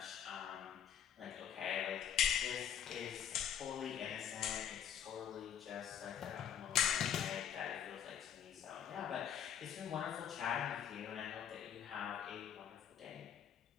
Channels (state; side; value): quieter; right; 9.1 dB